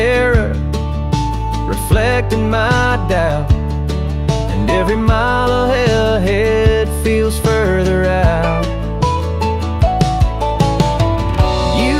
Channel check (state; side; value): identical; both; correlation 1.00